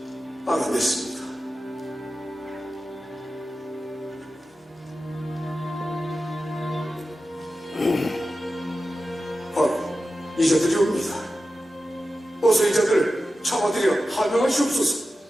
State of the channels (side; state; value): both; normal; correlation 0.93